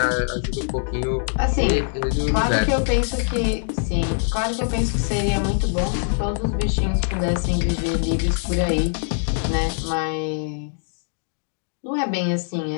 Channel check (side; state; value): right; silent; 63 dB below the other